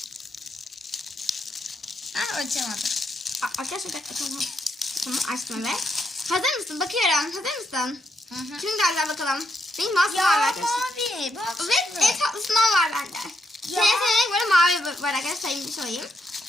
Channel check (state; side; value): normal; both; correlation 0.79